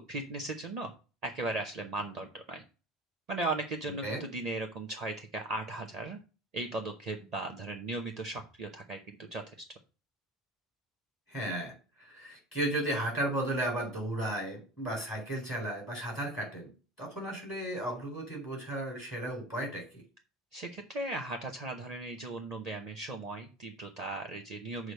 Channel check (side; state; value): both; normal; correlation 0.36